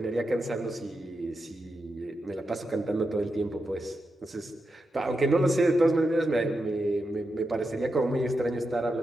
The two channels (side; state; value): both; normal; correlation 0.87